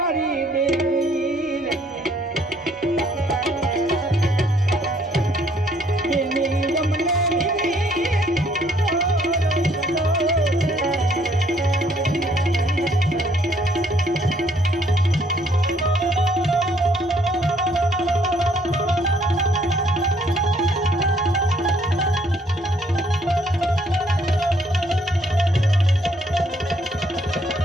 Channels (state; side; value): normal; both; correlation 0.65